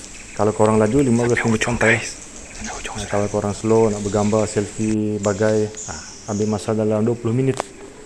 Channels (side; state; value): both; identical; correlation 1.00